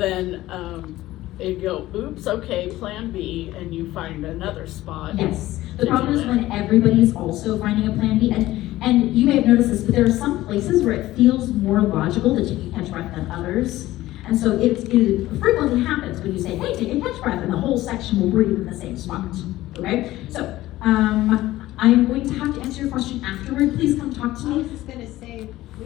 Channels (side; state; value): right; quieter; 16.2 dB